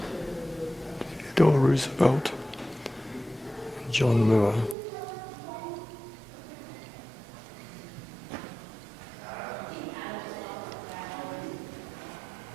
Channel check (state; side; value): drops out; left; at 4.8 s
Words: Theodore Roosevelt and John Muir.